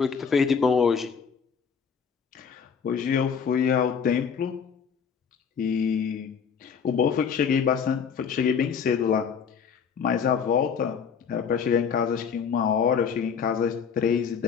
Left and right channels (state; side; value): quieter; right; 6.7 dB